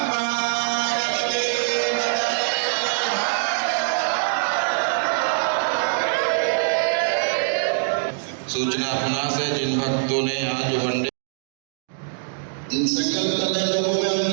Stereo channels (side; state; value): left; silent; digital silence